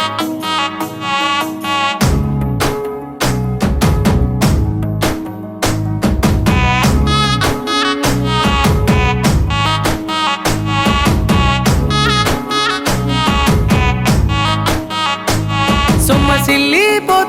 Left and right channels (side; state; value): both; identical; correlation 1.00